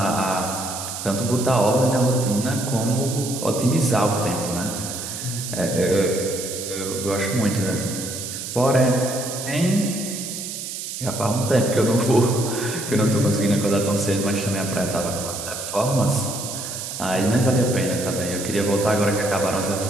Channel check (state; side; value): noise; right; hiss, 7 dB below the sound